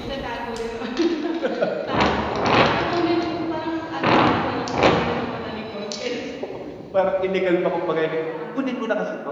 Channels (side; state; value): both; identical; correlation 1.00